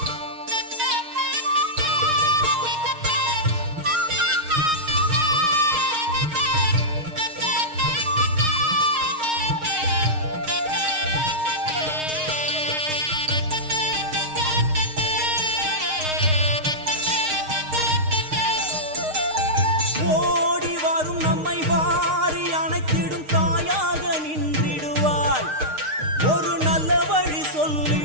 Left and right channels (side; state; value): left; late; 6.5 ms